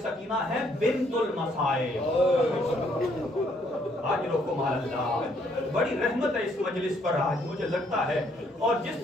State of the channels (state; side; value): normal; both; correlation 0.68